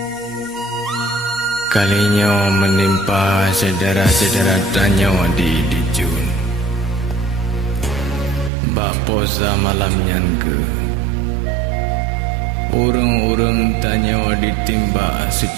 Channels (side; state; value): left; drops out; at 8.5 s